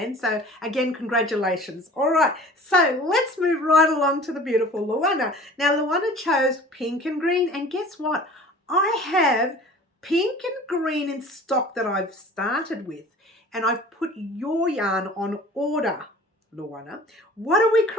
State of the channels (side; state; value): both; normal; correlation 0.44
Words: So again, congratulations. All right, so let's move right along to the beautiful Luana. Now, Luana chose pink and green, and guess what? I have pink and green in stock that I've started with, and I've put your yarn on order, Luana. What are we